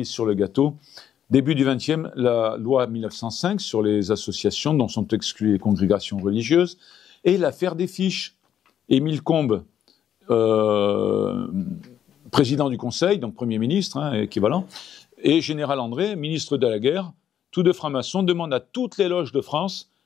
sur le gâteau. Début du XXe, la loi 1905 sur les associations dont sont exclues les congrégations religieuses, et l'affaire des fiches. Émile Combes, président du Conseil, donc Premier ministre, hein, équivalent, et Général André, ministre de la Guerre, tous deux francs-maçons, demandent à toutes les loges de France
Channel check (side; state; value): right; quieter; 9.8 dB